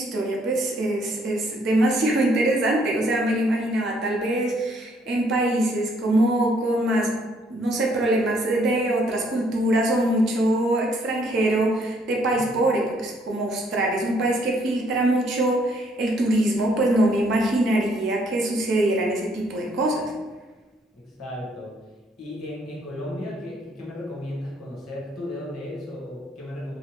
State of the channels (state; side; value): normal; both; correlation 0.67